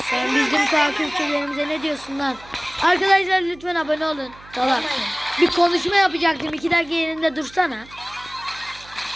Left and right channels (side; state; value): right; noise; hum, 22 dB below the sound